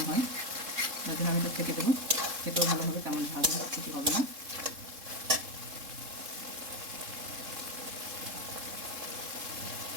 হয়, যার জন্য আমি এটা ছেঁকে দেবো। খেতেও ভালো হবে, তেমন ভালো কিছু হবে না।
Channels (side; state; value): left; late; 3.7 ms